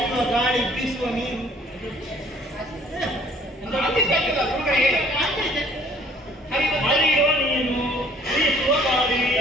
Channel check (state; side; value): normal; both; correlation 0.57